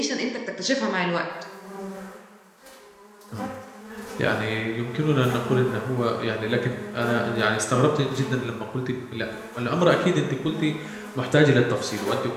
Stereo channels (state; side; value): identical; both; correlation 1.00